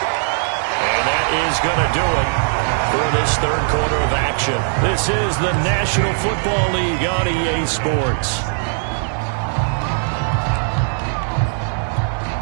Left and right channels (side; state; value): left; silent; digital silence